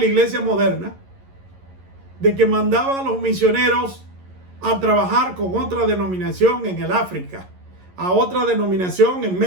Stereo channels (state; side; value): late; left; 11 ms